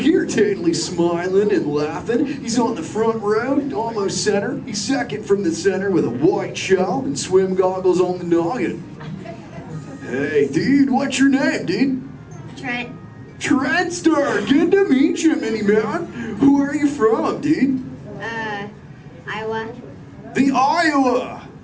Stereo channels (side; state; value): both; identical; correlation 1.00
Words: totally smiling and laughing. He's on the front row, almost center. He's second from the center with a white shell and swim goggles on the noggin. Hey, dude, what's your name, dude? Trent. Trentster, good to meet you, mini man. Who are you from, dude? Iowa. The Iowa.